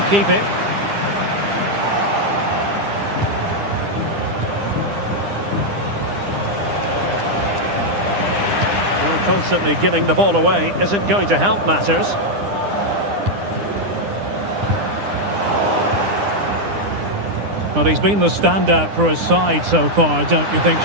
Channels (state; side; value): late; left; 9.9 ms